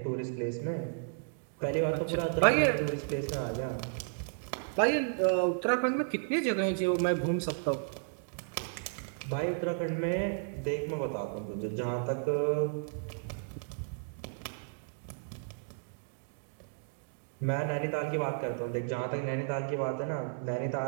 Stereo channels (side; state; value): left; silent; digital silence